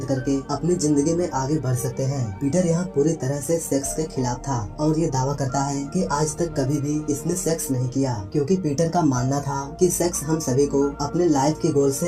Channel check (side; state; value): both; identical; correlation 1.00